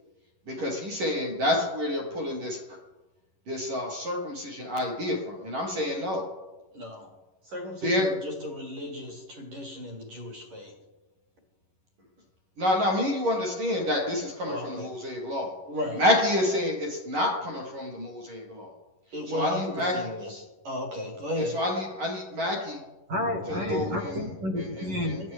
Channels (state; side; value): late; left; 11 ms